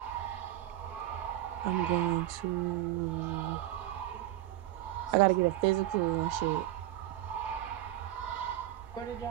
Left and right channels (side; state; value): left; quieter; 14.1 dB